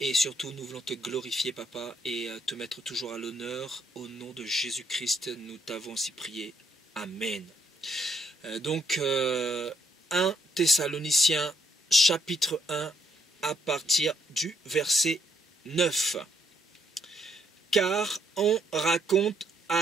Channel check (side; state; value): both; normal; correlation 0.72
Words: surtout, nous voulons te glorifier, Papa, et te mettre toujours à l'honneur. Au nom de Jésus-Christ, nous t'avons ainsi prié. Amen. 1 Thessaloniciens, chapitre 1, à partir du verset 9. Car on raconte